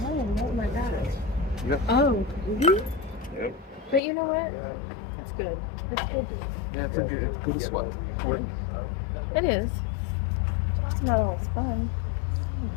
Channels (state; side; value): drops out; right; at 4.0 s